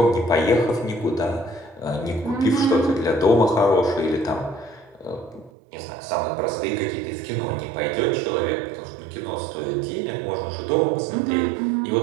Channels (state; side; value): drops out; left; at 5.5 s